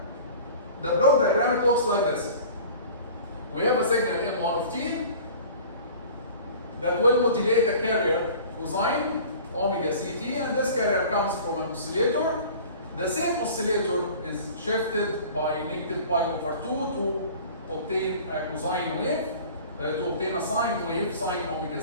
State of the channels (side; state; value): both; inverted; correlation -0.43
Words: it looks like this. We have a signal M1 of t that will modulate a carrier cosine omega ct, and this carrier comes from an oscillator. The same oscillator is shifted by negative pi over 2 to obtain a cosine wave, to obtain a sine wave, sine omega